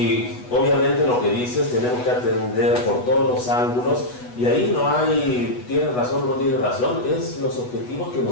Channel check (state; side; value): late; right; 8.1 ms